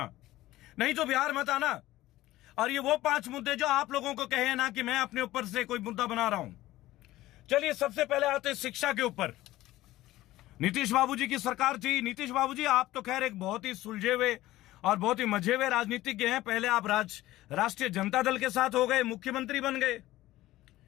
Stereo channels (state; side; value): quieter; right; 16.3 dB